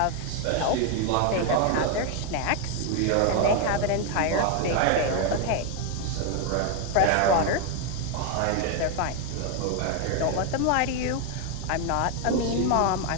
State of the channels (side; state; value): both; different; correlation 0.01